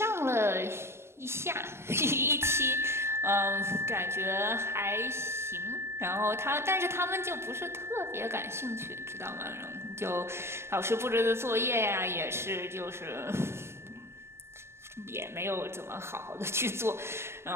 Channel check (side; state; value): left; late; 0.12 ms